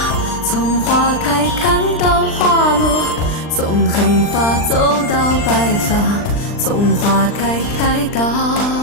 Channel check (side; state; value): right; late; 39 ms